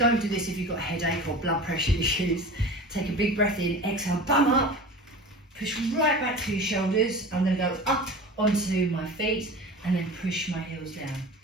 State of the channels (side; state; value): both; normal; correlation 0.35